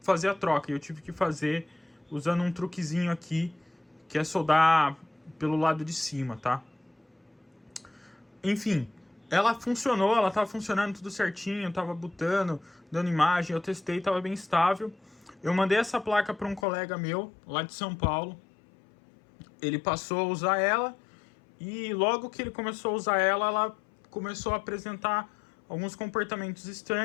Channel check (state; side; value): drops out; right; at 16.7 s